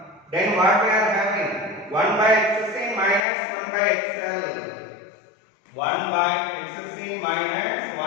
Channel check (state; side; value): drops out; right; at 3.2 s